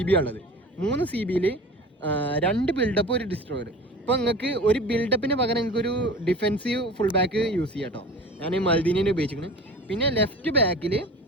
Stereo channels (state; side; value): normal; both; correlation 0.37